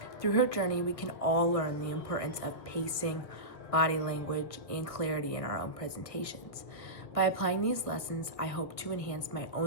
Through her journey, we can all learn the importance of pacing, body language, and clarity in our own presentations. By applying these lessons, I hope to enhance my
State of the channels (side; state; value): right; late; 1.7 ms